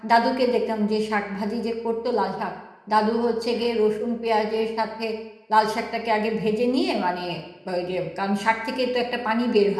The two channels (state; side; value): identical; both; correlation 1.00